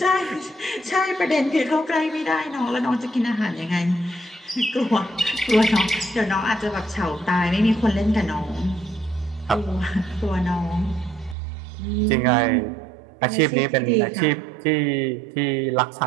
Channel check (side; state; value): left; drops out; at 11.4 s